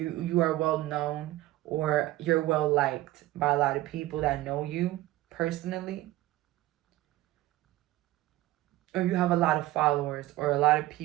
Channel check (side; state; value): left; quieter; 16.7 dB